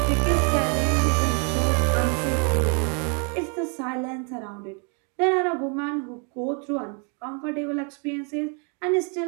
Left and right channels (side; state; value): left; quieter; 37.8 dB